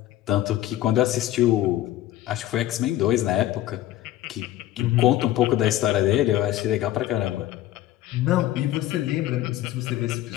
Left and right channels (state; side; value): quieter; right; 13.9 dB